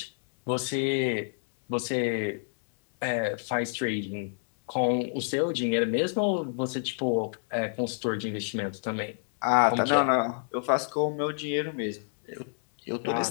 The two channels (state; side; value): silent; right; 59 dB below the other